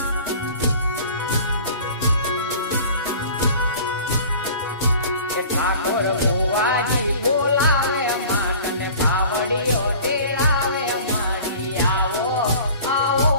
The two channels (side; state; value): both; inverted; correlation -0.43